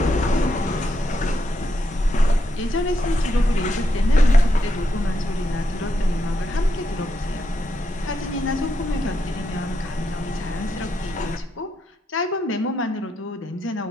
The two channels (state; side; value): normal; both; correlation 0.81